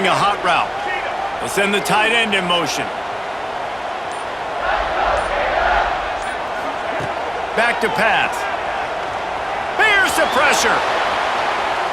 a hot route. We'll send the tight end in motion. Back to pass. Bears the pressure.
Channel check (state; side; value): identical; both; correlation 1.00